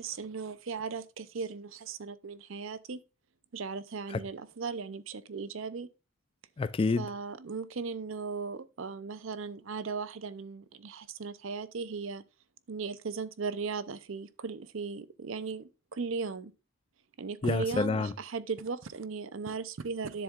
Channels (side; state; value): both; normal; correlation 0.19